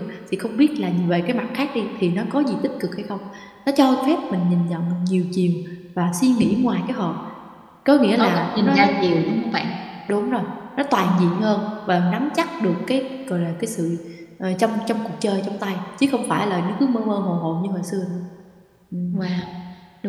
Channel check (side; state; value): both; identical; correlation 1.00